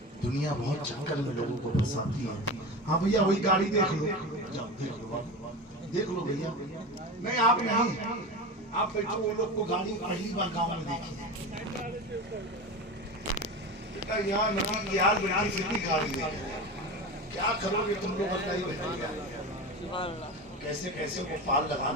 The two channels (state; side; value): normal; both; correlation 0.26